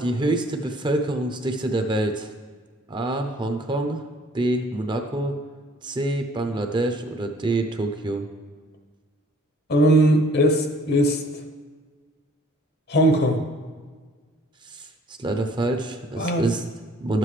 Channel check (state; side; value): normal; both; correlation 0.57